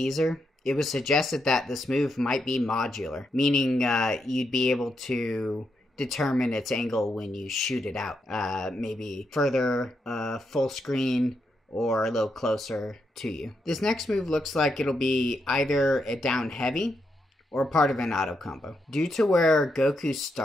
it was suggested that this move might be modular, meaning you'd be able to determine its angle when you shoot it out. Maybe further, full screen, or a little closer to you. This next move looks like it'll be either a down heavy or part of an auto combo. Due to where Goku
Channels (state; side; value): normal; both; correlation 0.82